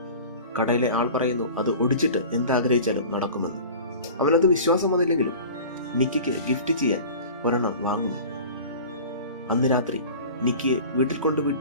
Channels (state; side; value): inverted; both; correlation -0.39